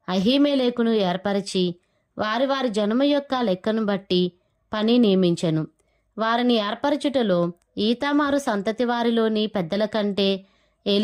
అహీమెలెకును ఏర్పరిచి వారి వారి జనము యొక్క లెక్కను బట్టి పని నియమించెను. వారిని ఏర్పరచుటలో ఈతామారు సంతతి వారిలోని పెద్దల కంటే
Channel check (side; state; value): both; identical; correlation 1.00